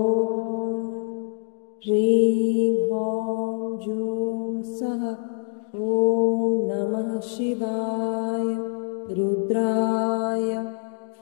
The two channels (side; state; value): right; silent; digital silence